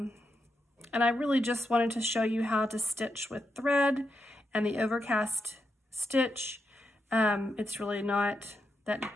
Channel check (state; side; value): normal; both; correlation 0.85